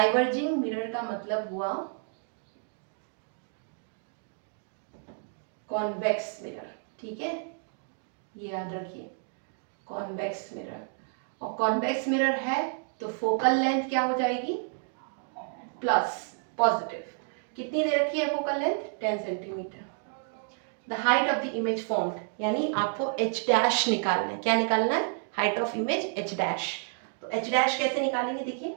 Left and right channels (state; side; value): silent; left; 58 dB below the other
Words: मिरर का मतलब हुआ कॉन्वेक्स मिरर। ठीक है, ये याद रखिए, कॉन्वेक्स मिरर। और कॉन्वेक्स मिरर है तो फोकल लेंथ क्या हो जाएगी प्लस, पॉजिटिव। कितनी दे रखी है focal length 10 centimetre. The height of the image formed, यानी आपको h डैश निकालना है। क्या निकालना है? Height of image h dash. तो h डैश कैसे निकालेंगे? देखिए,